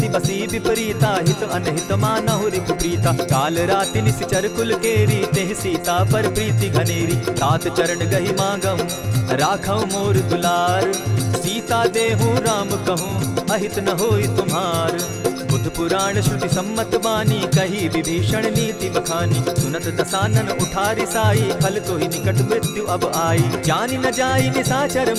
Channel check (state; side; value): identical; both; correlation 1.00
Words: बसी विपरीता, हित अनहित मानहु रिपु प्रीता। काल राति निशिचर कुल कुल केरी, तेह सीता पर प्रीति घनेरी। तात चरण गही मांगम, राखौ मोर दुलार। सीता देहु राम कहूँ, अहित न होई तुम्हार। बुद्ध पुराण श्रुति सम्मत बानी, कही विभीषण नीति बखानी। सुनत दसानन उठारी साई, फल तो ही निकट मृत्यु अब आई। जानी न जाई निशाचर